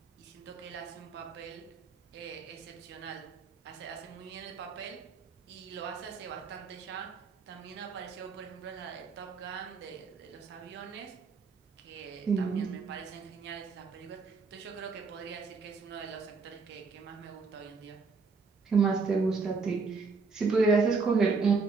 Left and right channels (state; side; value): quieter; left; 4.6 dB